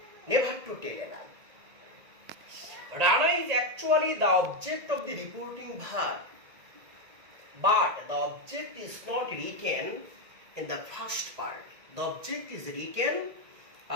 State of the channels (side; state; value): left; late; 1.8 ms